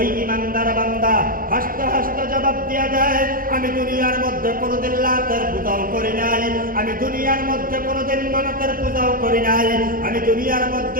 ইমানদার বান্দা হাসতে হাসতে জবাব দিয়া দেয়, আমি দুনিয়ার মধ্যে কোনোদিন লাতের পূজাও করি নাই, আমি দুনিয়ার মধ্যে কোনোদিন মানতের পূজাও করি নাই, আমি দুনিয়ার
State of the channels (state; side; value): late; left; 0.41 ms